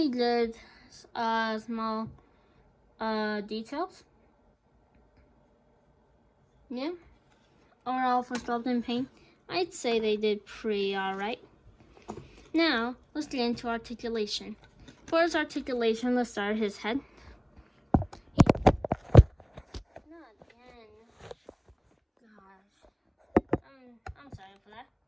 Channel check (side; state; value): both; identical; correlation 1.00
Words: good, small details. Yeah. Overall, for sculpting paint, I'd say they did pretty alright. Now, let's get into articulation. For his articulation, let's start his head. Not again. Gosh. I'm sorry for that.